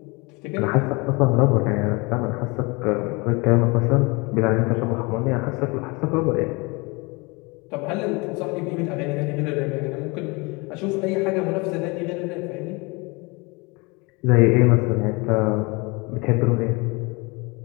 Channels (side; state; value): right; quieter; 27.4 dB